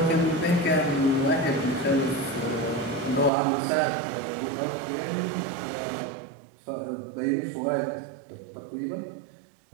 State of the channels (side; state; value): left; drops out; at 3.3 s